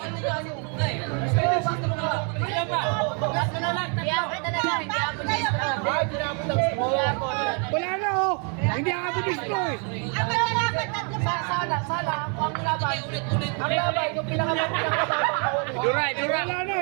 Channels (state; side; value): quieter; left; 38.4 dB